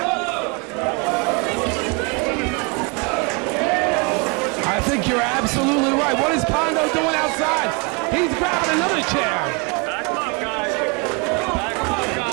I think you're absolutely right. What is Pondo doing outside? He's grabbing another chair.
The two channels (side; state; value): left; quieter; 31.2 dB